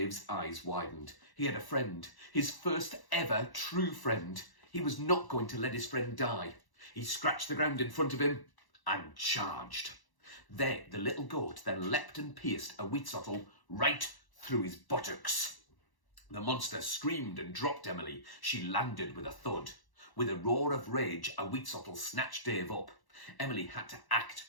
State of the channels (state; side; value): late; right; 1.1 ms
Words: eyes widened. He had a friend, his first ever true friend. He was not going to let his friend die. He scratched the ground in front of him and charged. The little goat then leapt and pierced a Wheatsottle right through his buttocks. The monster screamed and dropped Emily. She landed with a thud. With a roar of rage, a Wheatsottle snatched Dave up. Emily had to